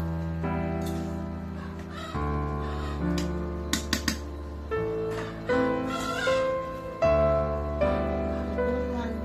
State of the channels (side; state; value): both; identical; correlation 1.00